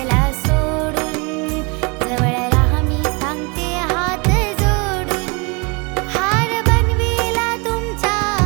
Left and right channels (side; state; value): left; quieter; 30.2 dB